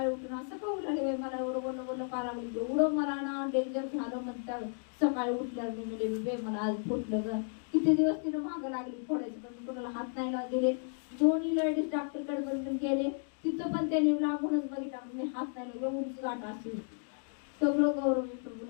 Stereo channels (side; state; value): right; silent; 56 dB below the other